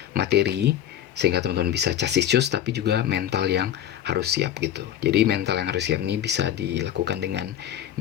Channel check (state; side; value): quieter; right; 10.9 dB